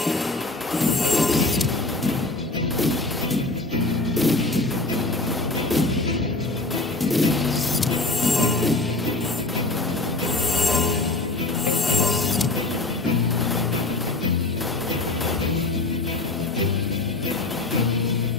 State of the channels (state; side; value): quieter; right; 3.0 dB